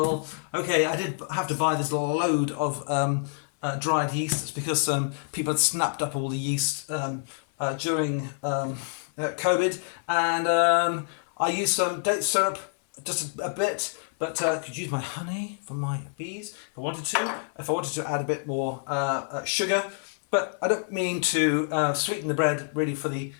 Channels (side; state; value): right; silent; 60 dB below the other